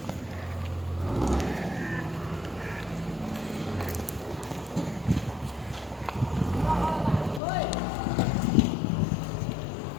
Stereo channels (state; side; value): drops out; right; at 7.4 s